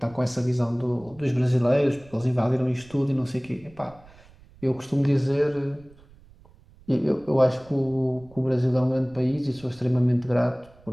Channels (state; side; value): noise; right; rumble, 25 dB below the sound